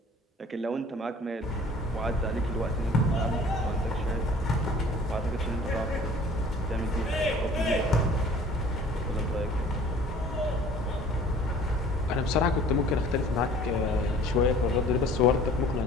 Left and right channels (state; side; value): normal; both; correlation 0.49